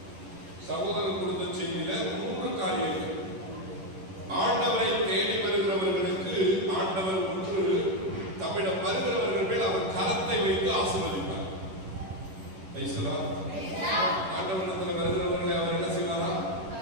சகோதரர் கொடுத்த செய்தியில 3 காரியங்கள். ஆண்டவரை தேடி வருகிறவர்களுக்கு ஆண்டவர் ஒன்று தம்மிடம் வருகிறவர்கள் மேல் அவர் கரத்தை வைத்து ஆசீர்வதிப்பார். ஆண்டவரிடத்தில் வருகிறவர்களை அவர் என்ன செய்வாரா?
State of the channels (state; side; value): late; left; 11 ms